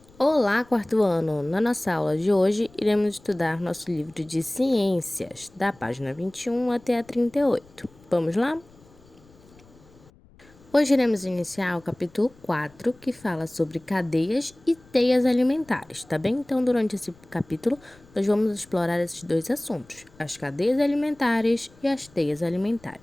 Olá, quarto ano! Na nossa aula de hoje, iremos estudar nosso livro de ciências, da página 21 até a 38. Vamos lá? Hoje iremos iniciar o capítulo 4, que fala sobre cadeias e teias alimentares, tá bem? Então, durante esse capítulo, nós vamos explorar esses dois assuntos, as cadeias alimentares e as teias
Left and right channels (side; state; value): left; noise; rumble, 27 dB below the sound